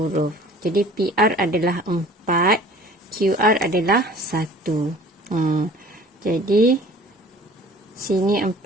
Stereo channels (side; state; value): both; normal; correlation 0.48